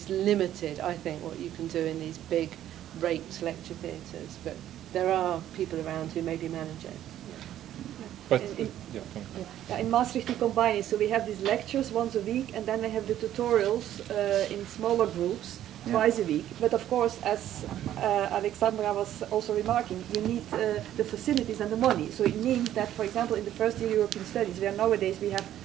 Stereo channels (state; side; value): quieter; left; 12.0 dB